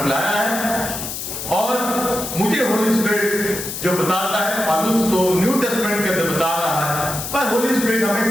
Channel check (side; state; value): left; noise; hiss, 6 dB below the sound